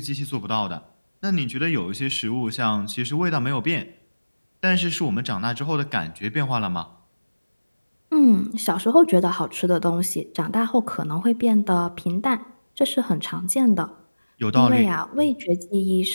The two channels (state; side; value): inverted; both; correlation -1.00